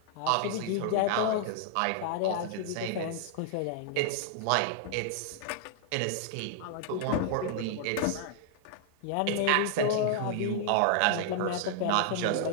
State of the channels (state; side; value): different; both; correlation 0.00